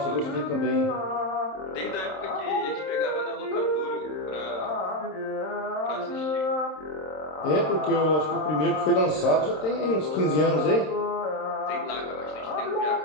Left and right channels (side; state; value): right; late; 26 ms